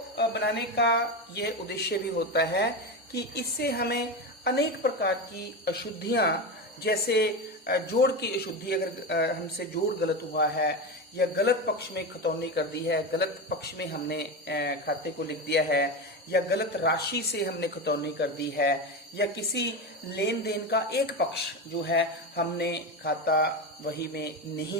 बनाने का यह उद्देश्य भी होता है कि इससे हमें अनेक प्रकार की अशुद्धियां, जैसे जोड़ की अशुद्धि, अगर हमसे जोड़ गलत हुआ है या गलत पक्ष में खतौनी कर दी है, गलत पक्ष में हमने खाते को लिख दिया है, या गलत राशि से हमने खतौनी कर दी है, या किसी लेन देन का एक पक्ष जो है हमने खाता वही में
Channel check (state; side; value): normal; both; correlation 0.18